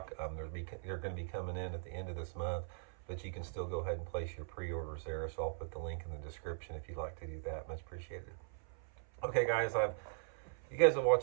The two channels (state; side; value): silent; left; 51 dB below the other